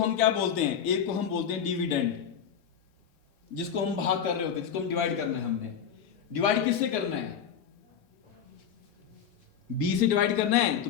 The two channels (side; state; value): right; quieter; 8.1 dB